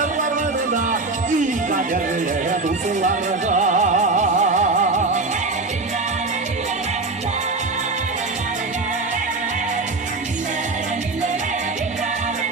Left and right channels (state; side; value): quieter; left; 3.6 dB